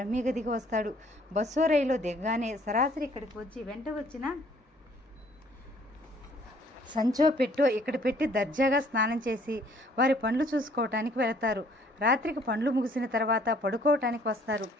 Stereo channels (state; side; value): normal; both; correlation 0.60